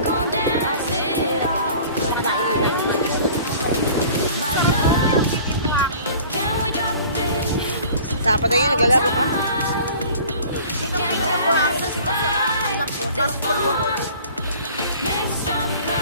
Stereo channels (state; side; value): inverted; both; correlation -0.47